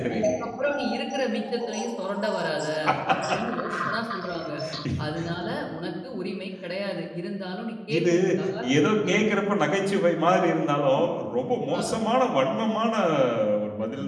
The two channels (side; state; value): both; identical; correlation 1.00